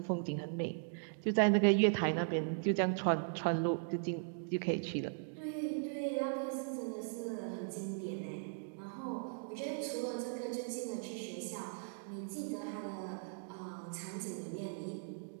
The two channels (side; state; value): left; silent; digital silence